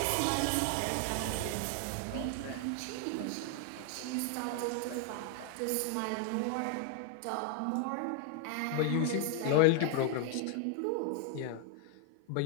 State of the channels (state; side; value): different; both; correlation 0.00